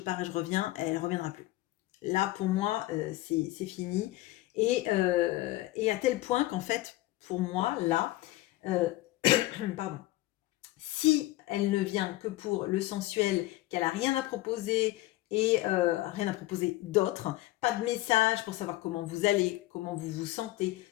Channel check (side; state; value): right; quieter; 17.3 dB